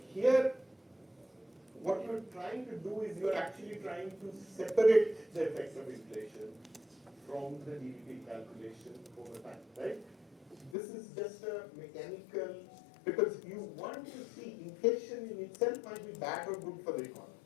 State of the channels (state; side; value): drops out; right; at 10.8 s